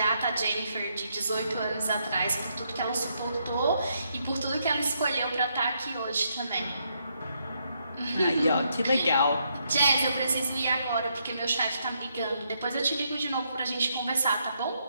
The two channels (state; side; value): inverted; both; correlation -0.76